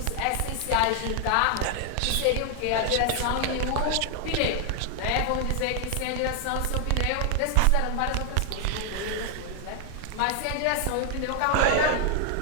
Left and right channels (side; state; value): both; different; correlation 0.00